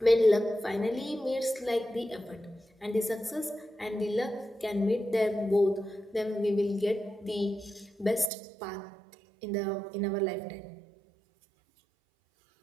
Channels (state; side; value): drops out; left; at 8.3 s